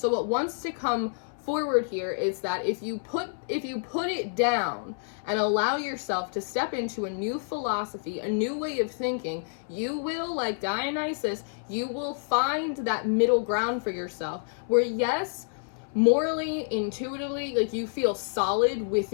what wants to come forward here is that if you put it down and allow yourself to step into a new philosophy, a new way of thinking, you will, like Dionysus, you will find that middle ground for yourself where, yes, morally, intuitively, like you feel solid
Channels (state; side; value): silent; right; 59 dB below the other